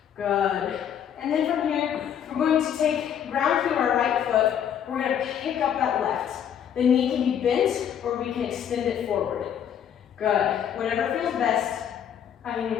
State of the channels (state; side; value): quieter; right; 9.0 dB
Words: Good. And then from here, we're going to take ground through our right foot. We're going to pick up that left. The knee can be bent or we can extend it forward. Good. Whatever feels best. I'm going